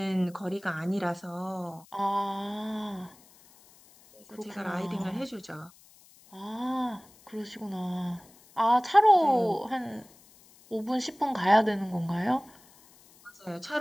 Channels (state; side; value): noise; left; hiss, 26 dB below the sound